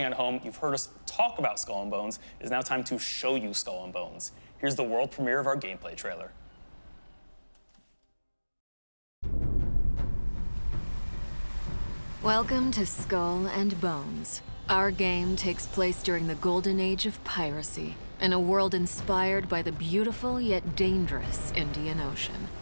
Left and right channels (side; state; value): both; inverted; correlation -1.00